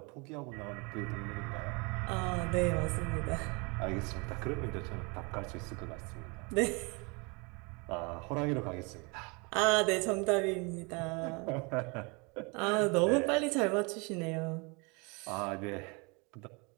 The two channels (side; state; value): left; quieter; 30.2 dB